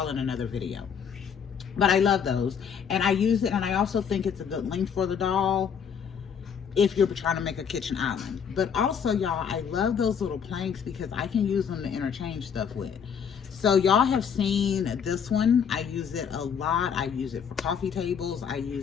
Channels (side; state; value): right; quieter; 7.3 dB